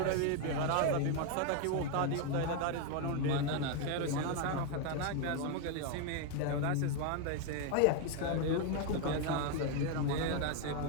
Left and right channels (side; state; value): both; different; correlation 0.01